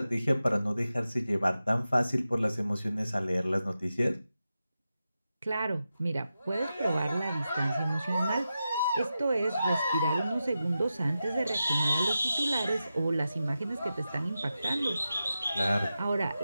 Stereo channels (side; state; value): both; inverted; correlation -0.91